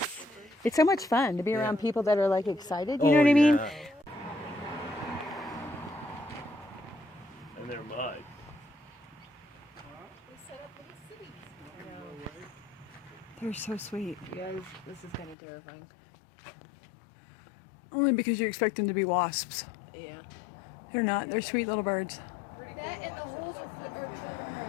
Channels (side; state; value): right; drops out; at 15.4 s